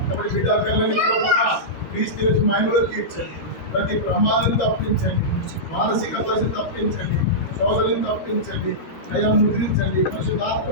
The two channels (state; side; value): late; right; 13 ms